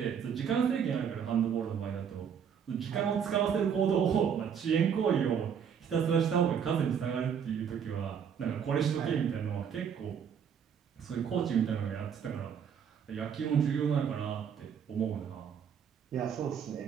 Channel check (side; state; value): left; quieter; 7.7 dB